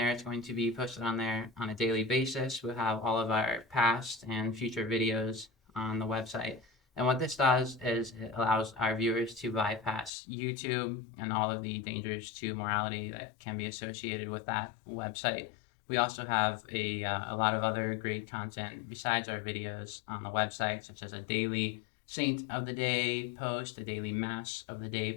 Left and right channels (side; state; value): right; drops out; at 10.1 s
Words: It's going to be posted on there on a daily basis. We'll have all of our past and future videos on the website. And what this does is it allows our viewers to bypass YouTube and all of the dangers to morality that can be associated with that website. We also have a lot of other great content besides our videos on the website, such as a daily Saint of the Day post, a daily Mass of the Day